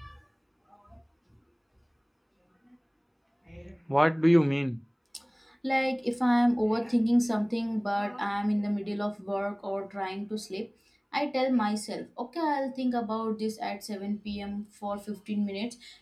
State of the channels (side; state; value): both; identical; correlation 1.00